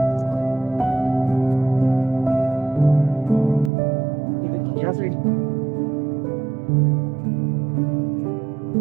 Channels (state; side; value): drops out; left; at 3.7 s